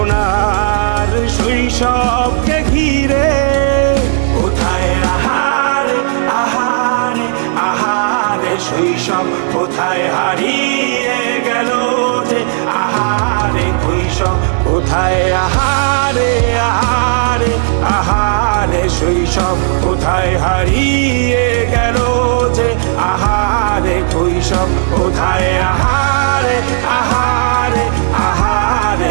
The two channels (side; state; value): left; silent; digital silence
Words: শৈশবকে ঘিরে, কোথায় আহারে আহারে আহারে শৈশব, কোথায় হারিয়ে গেল যে আহারে কৈশোর, কোথায় আহারে আহারে আহারে শৈশব, কোথায় হারিয়ে গেল যে আহারে কৈশোর, কোথায় আহারে আহারে আহারে